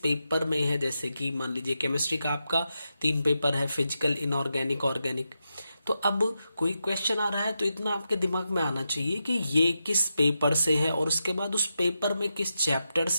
में है। जैसे कि मान लीजिए केमिस्ट्री का आपका 3 पेपर है, फिजिकल, इनऑर्गेनिक, ऑर्गेनिक। तो अब कोई क्वेश्चन आ रहा है तो इतना आपके दिमाग में आना चाहिए कि ये किस पेपर से है और उसके बाद उस पेपर में किस चैप्टर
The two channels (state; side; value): inverted; both; correlation -0.87